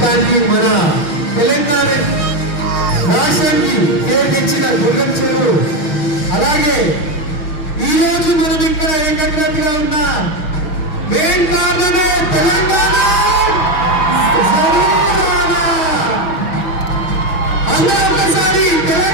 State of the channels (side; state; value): right; late; 6.4 ms